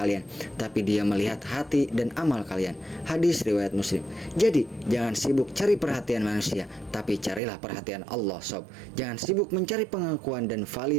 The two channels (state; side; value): drops out; left; at 7.4 s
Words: tapi Dia melihat hati dan amal kalian. Hadis riwayat Muslim. Jadi jangan sibuk cari perhatian manusia, tapi carilah perhatian Allah sob. Jangan sibuk mencari pengakuan dan